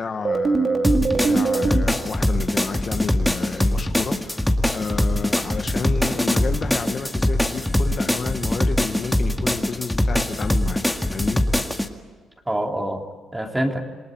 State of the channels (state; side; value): normal; both; correlation 0.93